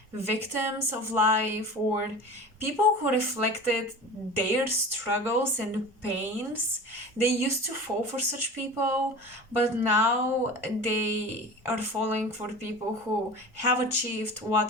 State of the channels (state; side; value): normal; both; correlation 0.35